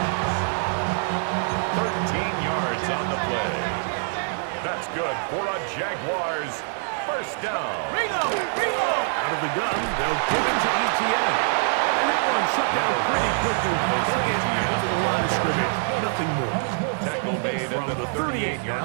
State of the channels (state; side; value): silent; left; 57 dB below the other